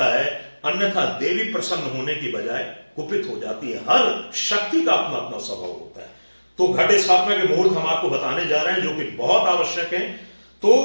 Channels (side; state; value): both; inverted; correlation -1.00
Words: है, अन्यथा देवी प्रसन्न होने की बजाय कुपित हो जाती है। हर शक्ति का अपना अपना स्वभाव होता है। तो घट स्थापना के मुहूर्त हम आपको बताने जा रहे हैं जो कि बहुत आवश्यक है। तो